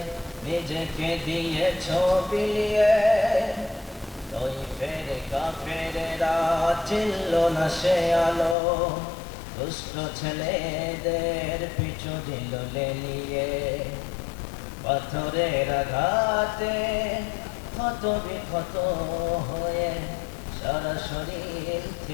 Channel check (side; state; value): right; drops out; at 8.6 s